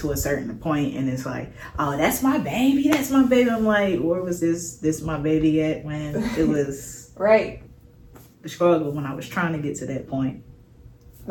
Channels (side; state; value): both; identical; correlation 1.00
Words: a certain point and it's like, oh, that's my baby, I'm like, where was this my baby at when it was right, the struggle, when I was trying to get to that point?